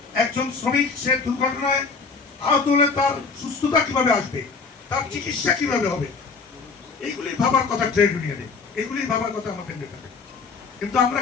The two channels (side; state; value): right; quieter; 4.7 dB